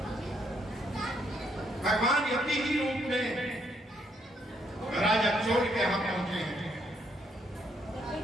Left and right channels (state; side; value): normal; both; correlation 0.72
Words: भगवान यति ही रूप में राजा चोर के यहाँ पहुंचे हैं।